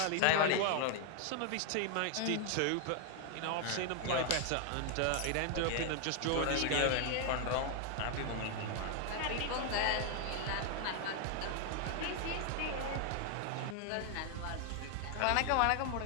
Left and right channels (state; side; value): different; both; correlation 0.00